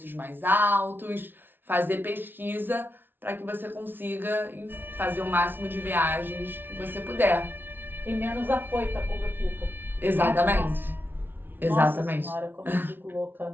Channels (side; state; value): left; late; 0.099 ms